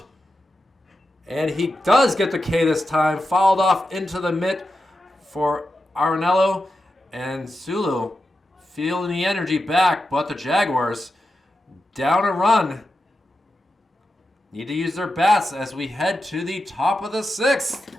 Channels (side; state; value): both; normal; correlation 0.89